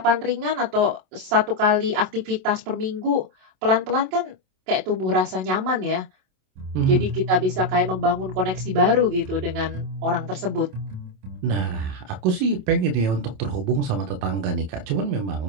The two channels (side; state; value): left; late; 27 ms